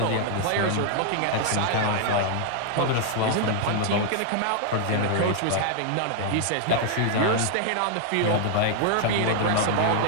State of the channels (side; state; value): both; different; correlation 0.00